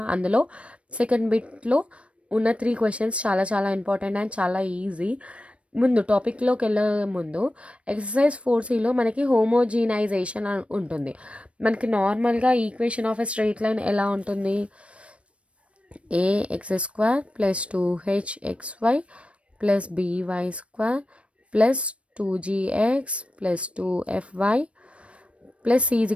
అందులో second బిట్లో ఉన్న 3 questions చాలా important and చాలా easy. ముందు టాపిక్లోకి వెళ్ళే ముందు ఎక్సర్సైజ్ 4Cలో మనకి హోమోజీనైజేషన్ ఉంటుంది. మనకి నార్మల్గా equation of a straight line ఎలా ఉంటుంది? ax² + 2hxy plus by square plus 2gx plus 2fy plus c is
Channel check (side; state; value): left; late; 0.061 ms